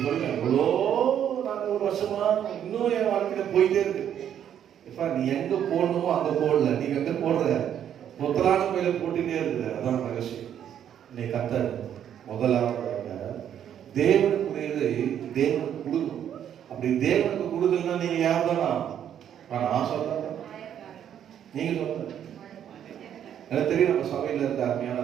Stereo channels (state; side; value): quieter; left; 9.7 dB